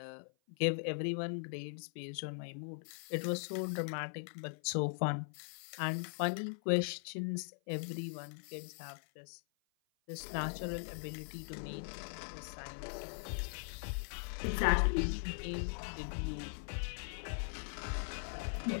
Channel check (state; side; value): silent; right; 51 dB below the other